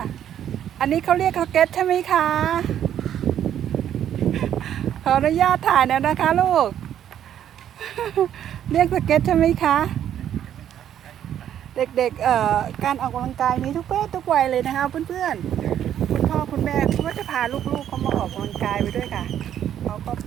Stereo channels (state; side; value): quieter; left; 10.3 dB